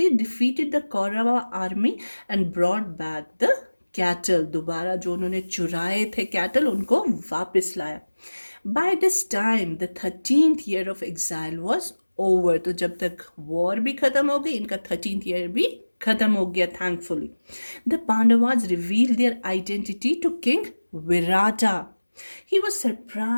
defeated the Kaurava army and brought back the cattle. दोबारा जो उन्होंने चुराए थे cattle, उनको वापस लाया. By this time, the 13th year of exile was over. तो जब तक war भी खत्म हो गई, इनका 13th year भी खत्म हो गया, thankfully. The Pandavas revealed their identity to King Virata. He was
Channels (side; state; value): both; inverted; correlation -1.00